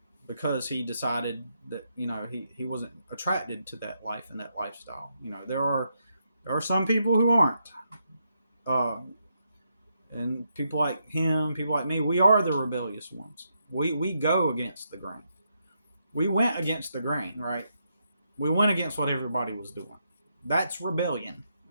Because he decided that, he wasn't attracted to that life and that lifestyle. There are some people who aren't. And people like him, people like me, we are the rebellious ones. We go against the grain. We went against the grain, right? We went against what everybody was doing. That's rebellion,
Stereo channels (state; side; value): inverted; both; correlation -0.80